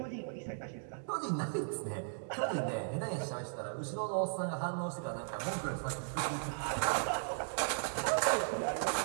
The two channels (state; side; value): silent; left; digital silence